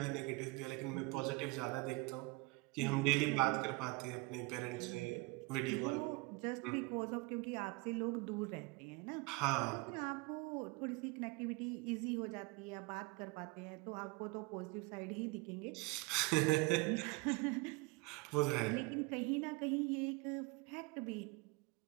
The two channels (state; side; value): quieter; left; 25.4 dB